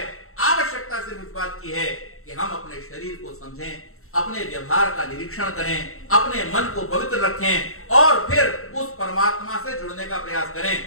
आवश्यकता सिर्फ इस बात की है कि हम अपने शरीर को समझें, अपने व्यवहार का निरीक्षण करें, अपने मन को पवित्र रखें, और फिर उस परमात्मा से जुड़ने का प्रयास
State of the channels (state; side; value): late; right; 0.63 ms